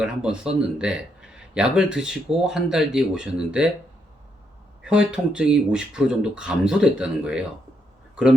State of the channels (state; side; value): normal; both; correlation 0.78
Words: 한번 썼는데 약을 드시고 한 달 뒤에 오셨는데 혀의 통증이 50% 정도 감소됐다는 거예요.